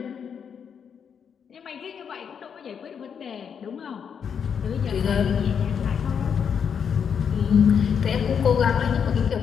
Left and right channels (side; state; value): right; quieter; 7.3 dB